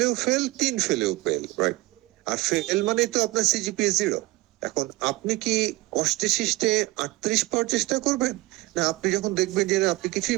ফেল, 3 ফেলেও ফেল, রাইট? আর ফেল মানে তো আপনার CGPA 0। এখন আপনি কি কষ্টে শিষ্টে 38 পাওয়ার চেষ্টা করবেন, না আপনি যখন দেখবেন যে না, আপনি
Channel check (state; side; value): quieter; left; 20.2 dB